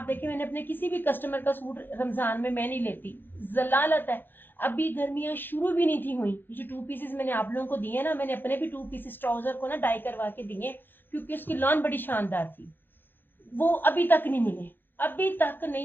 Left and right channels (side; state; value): right; late; 0.097 ms